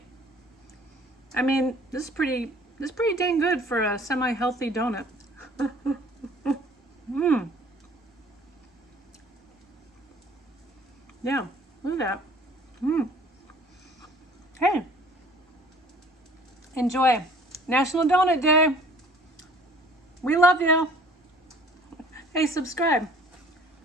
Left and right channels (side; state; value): both; normal; correlation 0.52